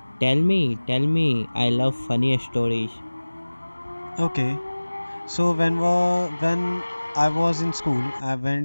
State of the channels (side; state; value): both; inverted; correlation -1.00